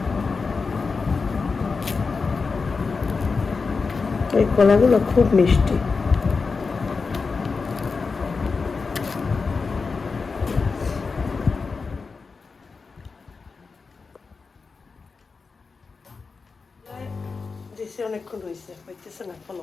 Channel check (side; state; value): right; quieter; 4.6 dB